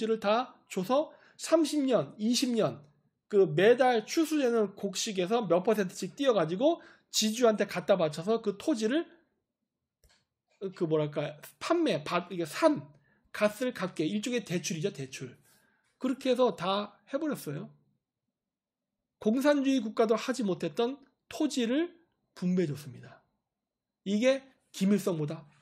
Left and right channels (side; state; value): both; identical; correlation 1.00